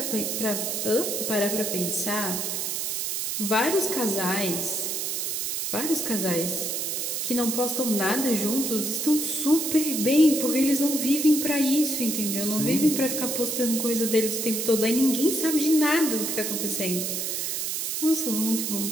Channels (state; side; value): noise; right; hiss, 2 dB below the sound